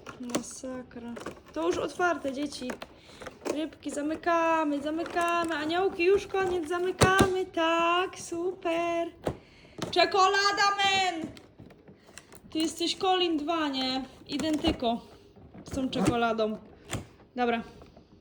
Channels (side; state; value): both; identical; correlation 1.00